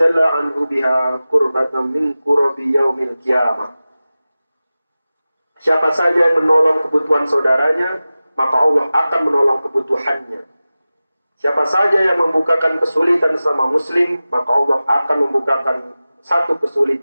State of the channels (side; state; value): both; inverted; correlation -0.96